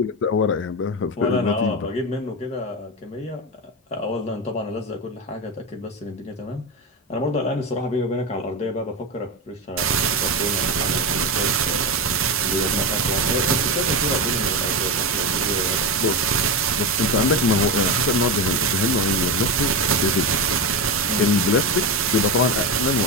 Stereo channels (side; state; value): both; normal; correlation 0.16